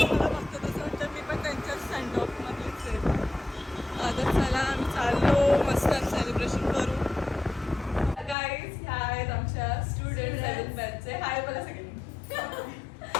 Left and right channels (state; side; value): drops out; right; at 8.3 s